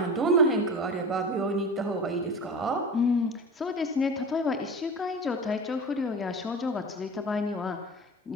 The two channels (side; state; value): both; normal; correlation 0.32